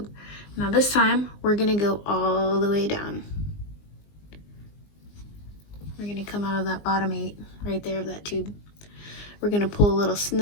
Now this time, we're gonna go all the way down. We're gonna come out of that bottom 8, right there of that tube. We're gonna pull a little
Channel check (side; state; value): right; late; 19 ms